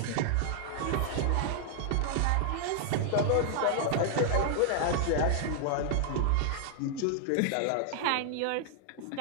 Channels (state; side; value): different; both; correlation -0.01